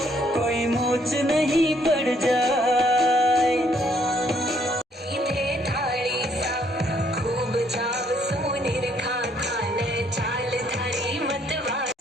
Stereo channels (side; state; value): both; normal; correlation 0.67